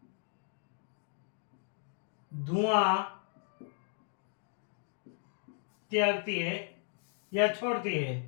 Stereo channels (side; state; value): right; silent; 54 dB below the other